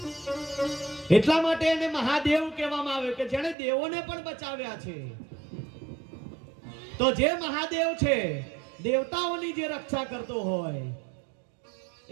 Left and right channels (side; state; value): left; drops out; at 3.6 s